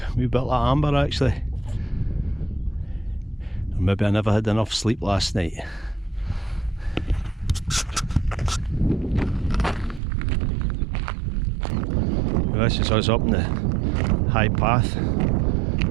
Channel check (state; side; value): drops out; left; at 10.0 s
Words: a wee bit like amber actually. Or maybe I never had enough sleep last night. Well, this is us up in the high path.